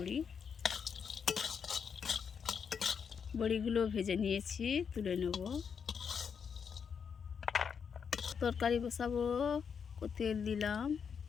বড়িগুলো ভেজে নিয়েছি, তুলে নেব। তরকারি বসাবো। তেল দিলাম,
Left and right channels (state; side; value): quieter; right; 6.7 dB